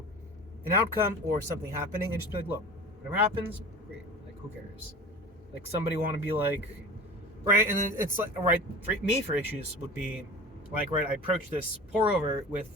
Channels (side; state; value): both; normal; correlation 0.36